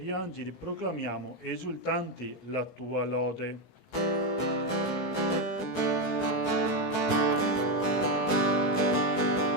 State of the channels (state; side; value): late; right; 17 ms